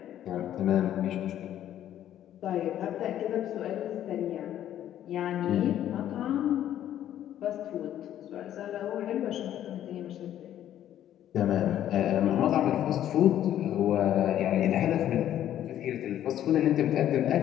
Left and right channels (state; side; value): quieter; right; 11.5 dB